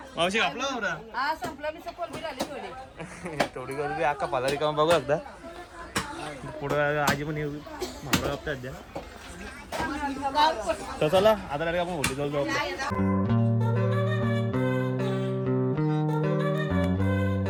मावशी कापला मावरा थोडी गर्दी अख्खा पालारी काम बघू एकदा पुढं आजी पण येऊ मावरा कापतात द्या तर चला आता आपण होली जाऊ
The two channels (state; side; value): identical; both; correlation 1.00